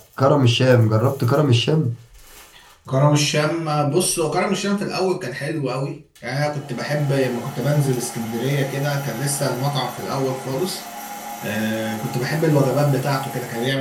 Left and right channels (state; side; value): identical; both; correlation 1.00